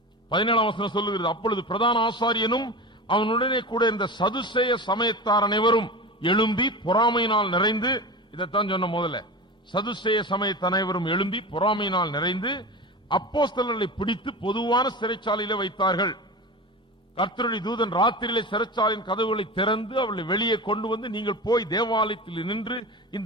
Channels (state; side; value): normal; both; correlation 0.28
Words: 17ஆம் வசனம் சொல்லுகிறது, அப்பொழுது பிரதான ஆசாரியனும் அவனுடனே கூட இருந்த சதுசேய சமயத்தார் அனைவரும் எழும்பி பொறாமையினால் நிறைந்து, இதைத்தான் சொன்ன முதல்ல, சதுசேய சமயத்த அனைவரும் எழும்பி பொறாமையினால் நிறைந்து அப்போஸ்தலர்களை பிடித்து பொதுவான சிறைச்சாலையிலே வைத்தார்கள். கர்த்தருடைய தூதன் ராத்திரியிலே சிறைச்சாலையின் கதவுகளை திறந்து அவர்களை வெளியே கொண்டு வந்து, நீங்கள் போய் தேவாலயத்தில் நின்று